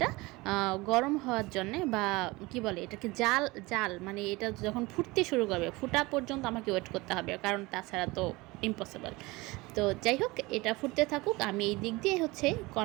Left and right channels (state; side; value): quieter; left; 22.3 dB